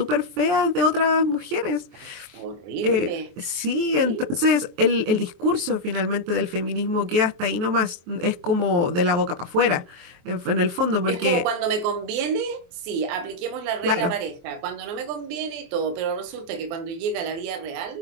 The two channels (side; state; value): left; late; 23 ms